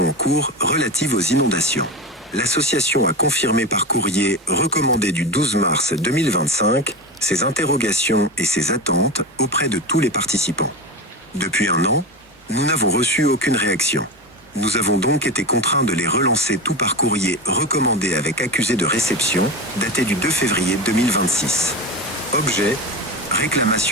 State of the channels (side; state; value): both; normal; correlation 0.22